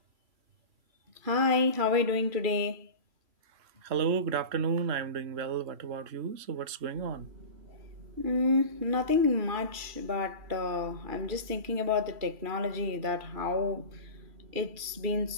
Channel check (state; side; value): late; left; 3.0 ms